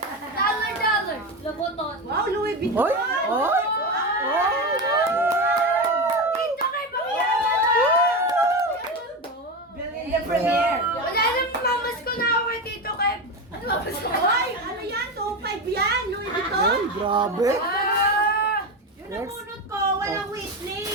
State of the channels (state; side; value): normal; both; correlation 0.18